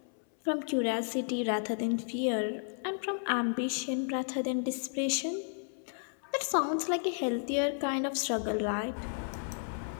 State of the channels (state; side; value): silent; right; 56 dB below the other